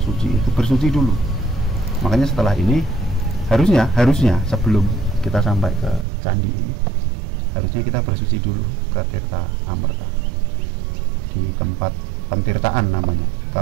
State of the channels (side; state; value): left; drops out; at 6.1 s